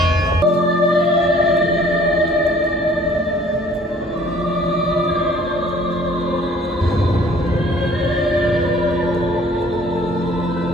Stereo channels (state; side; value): normal; both; correlation 0.55